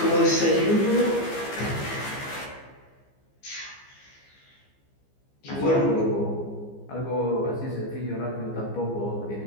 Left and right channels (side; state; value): right; late; 15 ms